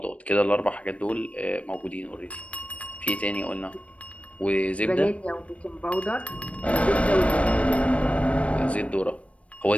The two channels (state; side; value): late; right; 0.063 ms